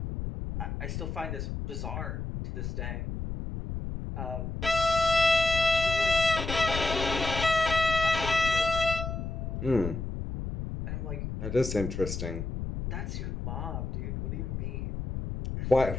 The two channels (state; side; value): noise; left; rumble, 5 dB below the sound